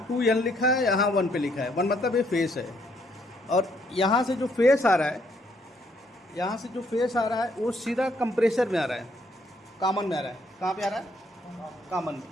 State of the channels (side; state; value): both; normal; correlation 0.70